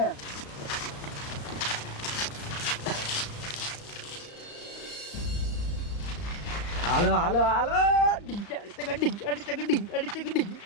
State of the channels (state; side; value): late; right; 35 ms